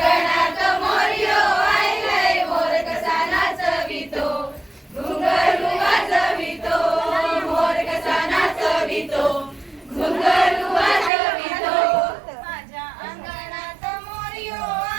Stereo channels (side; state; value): left; drops out; at 11.1 s